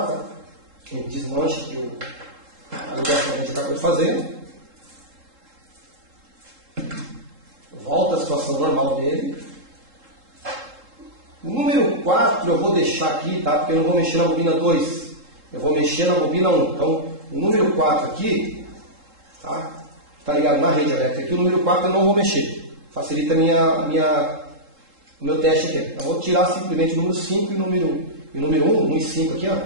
tá? A gente desmancha que a ligação que a gente acabou de fazer. Volta à situação normal dele. O número 4 eu vou deixar aqui, tá? Porque eu não vou mexer na bobina 2. Eu vou mexer na bobina 1. Então, o número 4 aqui, tá? Está ligado na rede elétrica aqui. O número 4 eu não vou mexer. Facilita o meu teste aqui. Eu vou tirar simplesmente o número 5 e o número 1 e 5 aqui,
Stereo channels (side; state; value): left; late; 3.7 ms